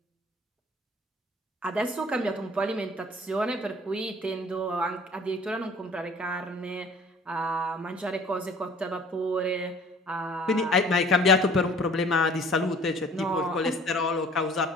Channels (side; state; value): both; normal; correlation 0.50